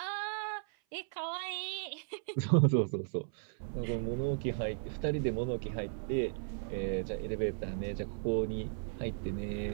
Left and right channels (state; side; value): silent; left; 54 dB below the other